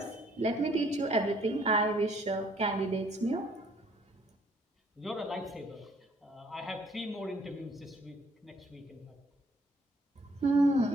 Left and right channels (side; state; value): both; normal; correlation 0.62